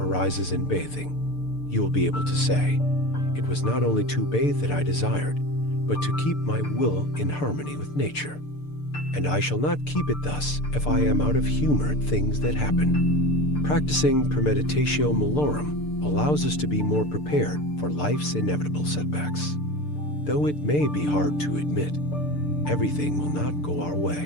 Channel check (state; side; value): late; right; 6.7 ms